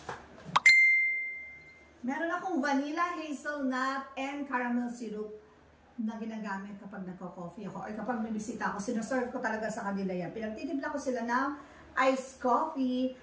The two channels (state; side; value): identical; both; correlation 1.00